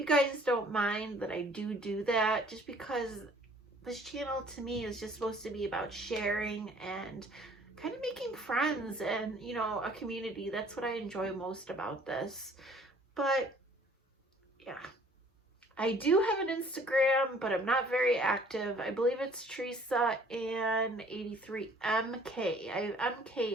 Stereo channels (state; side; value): normal; both; correlation 0.56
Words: guys don't mind that I do that, just because this channel to me is just supposed to be about sharing and kind of making friends and, you know, a community. That's what I enjoy most about this. But yeah, I do have an Instagram, but I'm not very active. I believe it's Teresa and 83MK. I have